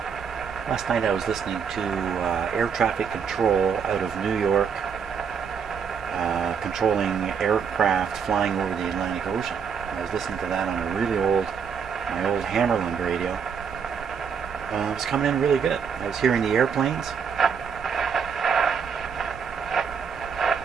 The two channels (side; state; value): left; quieter; 6.7 dB